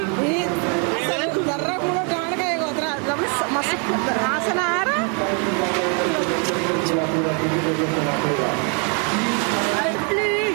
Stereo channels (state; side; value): quieter; left; 37.9 dB